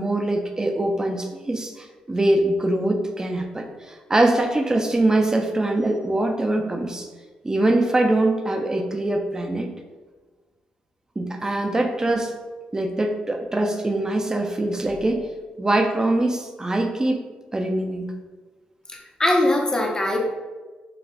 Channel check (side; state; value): both; normal; correlation 0.90